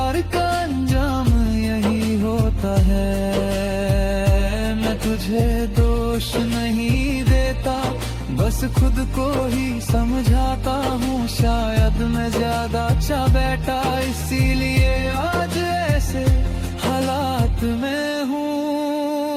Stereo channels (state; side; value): identical; both; correlation 1.00